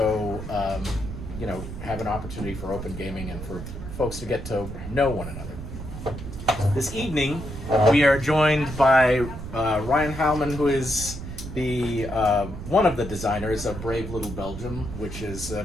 have an opportunity for open gaming and for folks to get to know one another. This evening, we are joined by Ryan Heilman, who is the one of the designers of Brave Little Belgium, which is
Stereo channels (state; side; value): noise; right; rumble, 9 dB below the sound